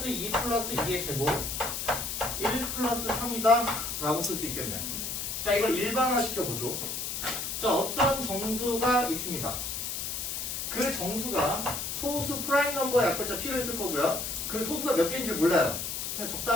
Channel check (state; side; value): noise; left; hiss, 4 dB below the sound